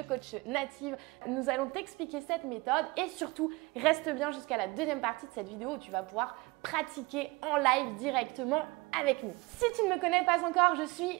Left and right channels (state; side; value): quieter; left; 24.0 dB